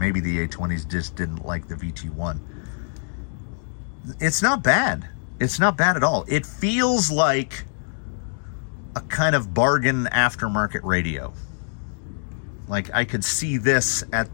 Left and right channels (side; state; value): right; silent; digital silence